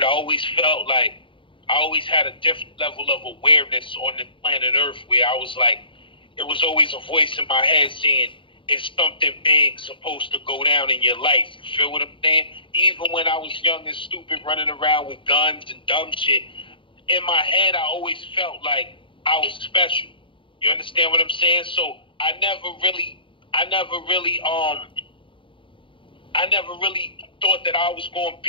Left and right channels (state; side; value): late; right; 0.25 ms